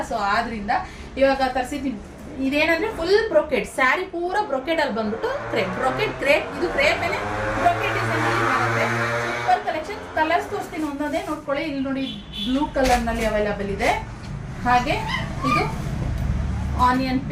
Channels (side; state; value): both; identical; correlation 1.00